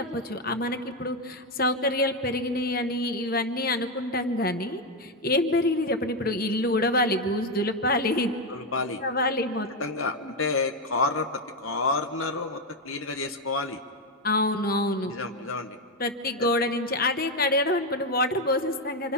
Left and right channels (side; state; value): both; normal; correlation 0.07